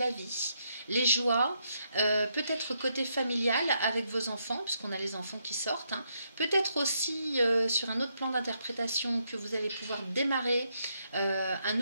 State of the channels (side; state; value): both; inverted; correlation -0.78